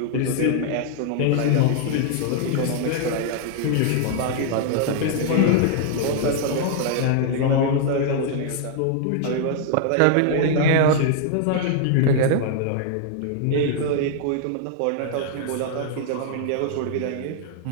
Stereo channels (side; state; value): both; different; correlation -0.01